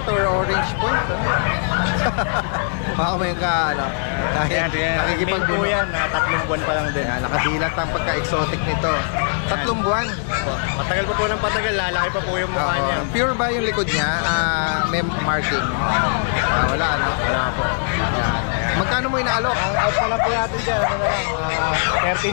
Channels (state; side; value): silent; right; digital silence